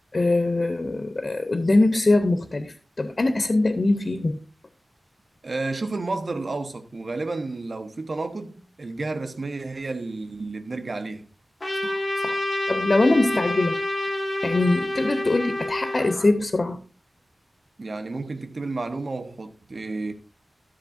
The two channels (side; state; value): both; normal; correlation 0.96